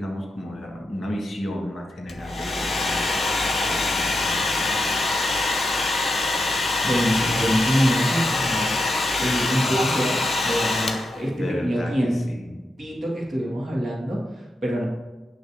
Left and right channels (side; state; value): both; normal; correlation 0.87